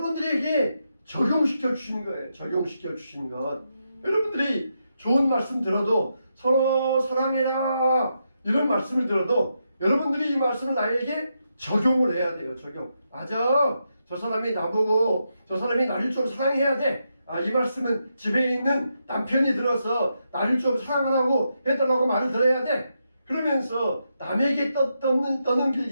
적용시켜 주신 거예요. 적용시켜 주신 것. 여러분들이 좋은 말씀 들어도 서로 사랑해라 이런 말씀을 들어도 여러분들이 이 말씀을 나에게 적용을 해야 돼요. 적용. 맞아. 저 사람이 나보고 저 사람이 나를 좀 사랑해야 돼. 이 말씀은 집에 있는 남편이 들어서 나를 좀 사랑하라고 해달라고 말을 들어야 돼. 그러면서 남에게 떠넘길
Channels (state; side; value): inverted; both; correlation -0.84